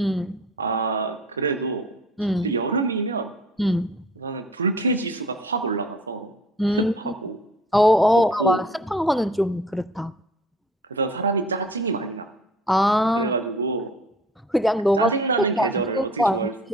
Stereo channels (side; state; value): both; normal; correlation 0.50